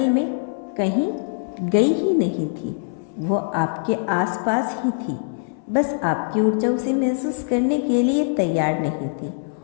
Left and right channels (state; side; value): silent; right; 64 dB below the other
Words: में कहीं गई ही नहीं थी, वो आपके आसपास ही थी। बस आपकी ऊर्जा उसे महसूस करने के लिए तैयार नहीं थी।